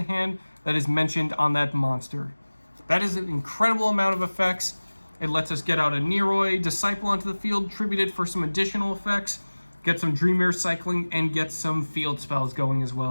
hand that is mentioned on that monster. That is an incredible amount of effects. It lets us get out a YuGiOh Disciple onto the field, tribute it for some additional effects, get some Dream Mirror cycling, and get some field spells going as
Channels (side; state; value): both; inverted; correlation -1.00